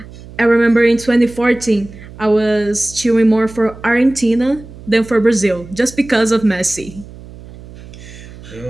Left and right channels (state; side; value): noise; right; hum, 18 dB below the sound